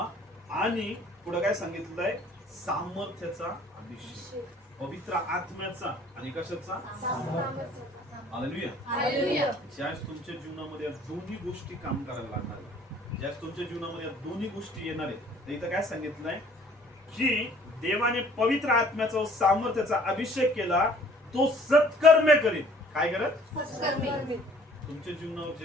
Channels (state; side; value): normal; both; correlation 0.56